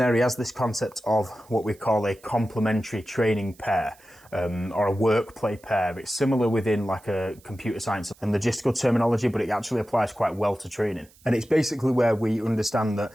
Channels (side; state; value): right; noise; hiss, 28 dB below the sound